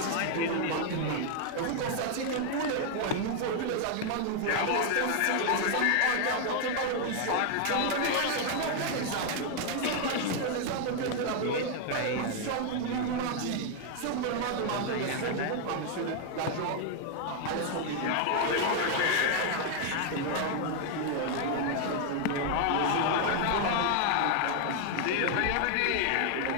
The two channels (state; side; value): different; both; correlation 0.00